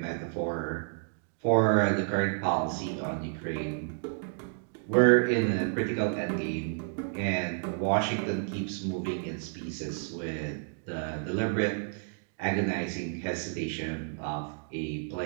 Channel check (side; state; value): left; silent; 57 dB below the other